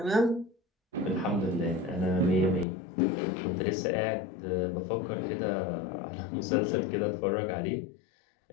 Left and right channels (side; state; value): right; drops out; at 2.7 s